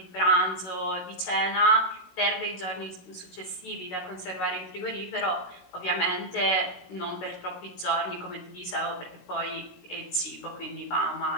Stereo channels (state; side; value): late; right; 16 ms